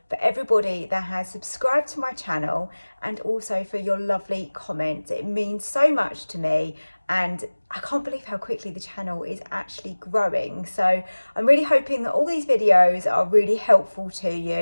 for everybody that has subscribed to my channel and also for your lovely comments. It means so much to me, and I can't believe how quickly the channel is actually growing. So I'm really hoping that all these videos are really helpful to you,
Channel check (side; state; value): both; inverted; correlation -1.00